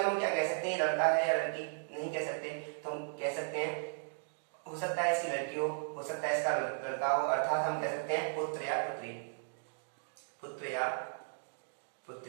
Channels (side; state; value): left; silent; digital silence